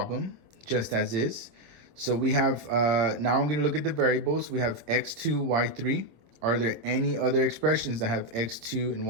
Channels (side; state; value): left; late; 26 ms